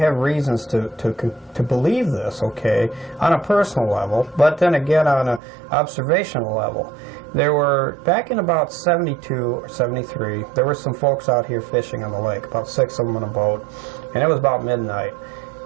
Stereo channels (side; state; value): left; drops out; at 5.4 s